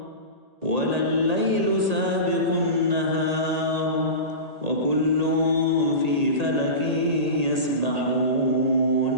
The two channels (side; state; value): left; late; 1.8 ms